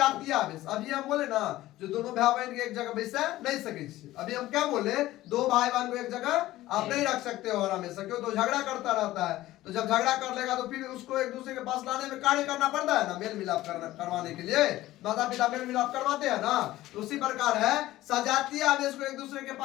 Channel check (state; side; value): quieter; right; 16.0 dB